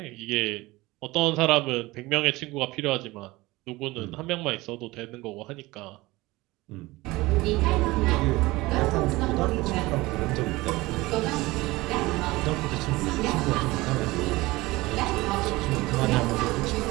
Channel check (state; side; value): quieter; left; 20.5 dB